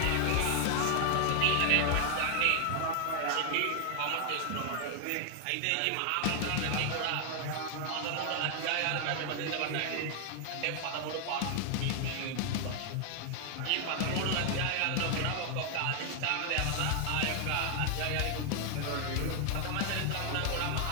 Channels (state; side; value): different; both; correlation 0.00